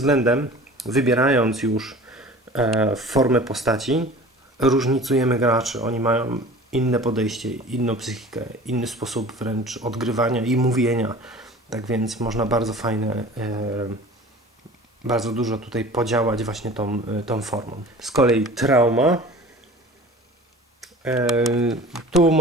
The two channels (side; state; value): both; normal; correlation 0.42